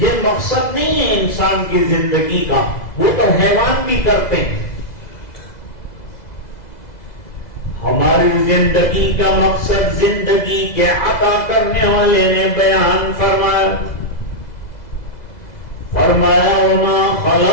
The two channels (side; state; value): right; late; 2.0 ms